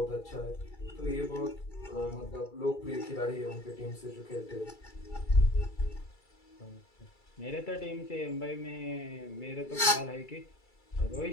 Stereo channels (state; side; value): late; right; 2.3 ms